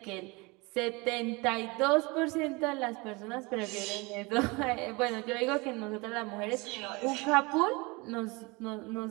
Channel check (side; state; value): left; quieter; 26.1 dB